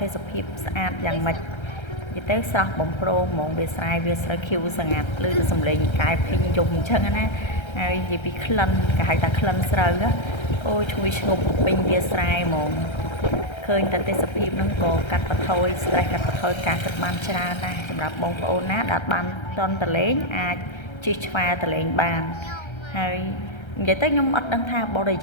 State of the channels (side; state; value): right; late; 1.3 ms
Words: េសភាពស្អាតយ៉ាងម៉េចនិយាយទៅស្រស់បំព្រងហ្មងវាស្រែវាស្រូវខៀវស្ងាត់ឮទៅសំឡេងកែភីងយំអញ្ចឹងណាហើយនិយាយពីក្លិនគេហៅថាក្លិនស្រូវអូឈ្ងុយឈ្ងប់ពេញវាស្រែហ្មងឃើញតែទេសភាពហ្នឹងក៏កាត់បន្ថយ stress កាត់បន្ថយការគិតបានច្រើនណាស់សម្រាប់បងប្អូនណាដែលបានតន់តលេងអាចជិះឆ្វែលតលេងបានហើយនិយាយទៅខ្ញុំអត់ដឹងថាបរិ